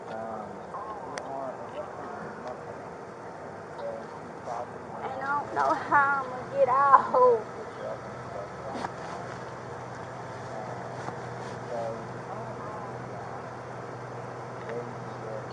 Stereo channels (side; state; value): both; identical; correlation 1.00